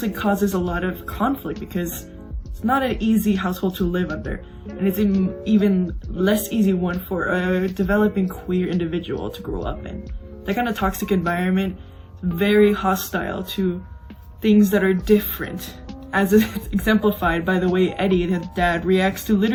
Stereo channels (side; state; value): both; identical; correlation 1.00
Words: causes a lot of conflict because it's not an easy household to live under, and it's an even less easy one for a developing queer individual to grow up in. That kind of toxic environment is very hostile to things that are different, as is exemplified by the way Eery, his dad, reacts to